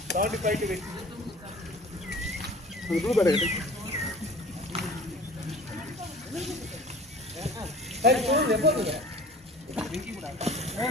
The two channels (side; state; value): both; normal; correlation 0.44